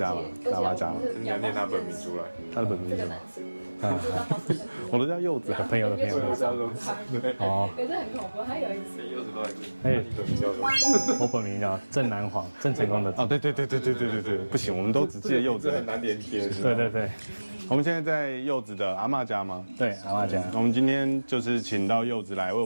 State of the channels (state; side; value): inverted; both; correlation -1.00